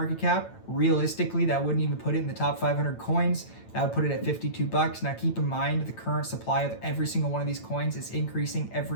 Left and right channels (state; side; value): late; right; 9.0 ms